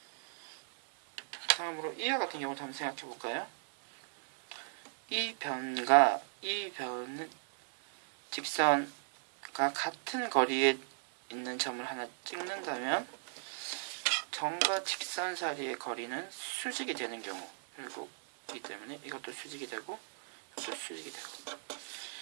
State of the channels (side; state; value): left; silent; 54 dB below the other